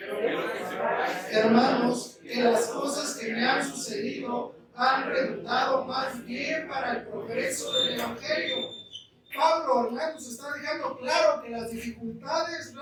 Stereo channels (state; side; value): identical; both; correlation 1.00